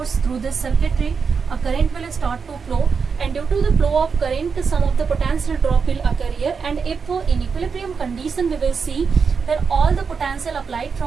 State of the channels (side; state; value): left; quieter; 5.6 dB